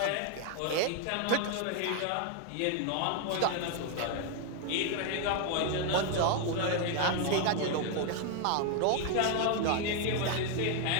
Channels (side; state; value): both; different; correlation 0.01